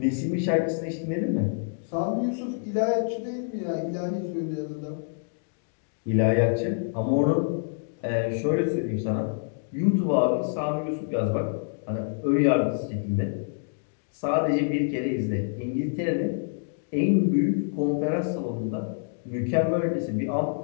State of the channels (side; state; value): right; silent; digital silence